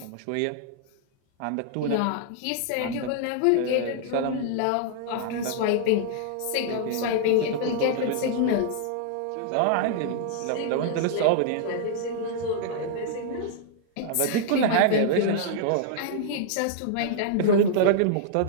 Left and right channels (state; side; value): different; both; correlation -0.01